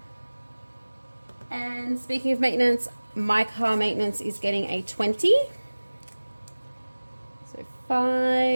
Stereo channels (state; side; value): inverted; both; correlation -1.00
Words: And speaking of maintenance, my car maintenance is getting a 20. So